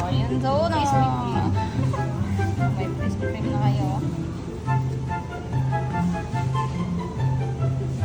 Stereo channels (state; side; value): identical; both; correlation 1.00